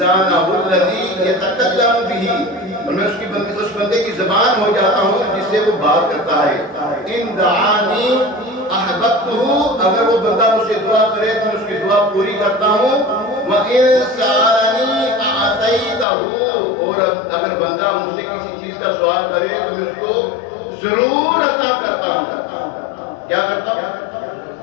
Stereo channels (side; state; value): right; drops out; at 16.1 s